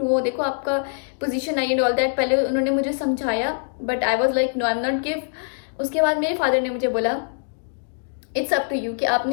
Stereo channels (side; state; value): right; silent; digital silence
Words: देखो आपका पोजीशन आई एंड ऑल दैट, पहले उन्होंने मुझे समझाया, but I was like no, I am not give. उसके बाद मेरे फादर ने मुझे बोला इट्स अप टू यू कि